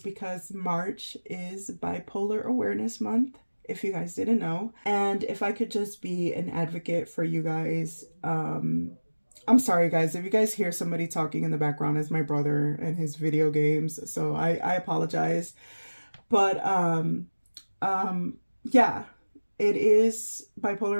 March is Bipolar Awareness Month, if you guys didn't know. And if I could just be an advocate for you guys, I'm sorry guys, if you guys hear somebody talking in the background, it's my brother and his video games, so I apologize. But yeah, it is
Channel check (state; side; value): inverted; both; correlation -1.00